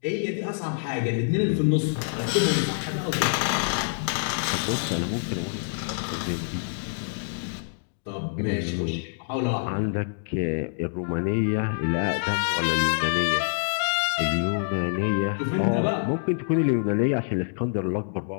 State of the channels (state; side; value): silent; right; digital silence